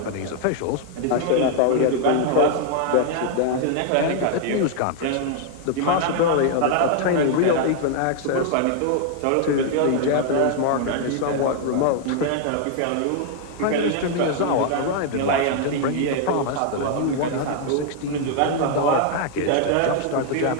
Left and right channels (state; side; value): different; both; correlation 0.00